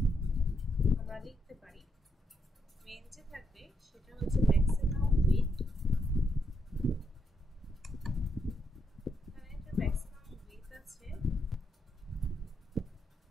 আমরা লিখতে পারি, মেইন যে থাকবে সেটা হচ্ছে ম্যাক্সিমাম উইডথ, এখানে একটা ম্যাক্সিমাম উইডথ আছে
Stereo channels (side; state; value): both; normal; correlation 0.79